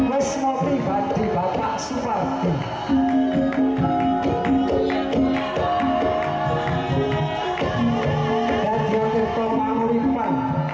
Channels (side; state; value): both; identical; correlation 1.00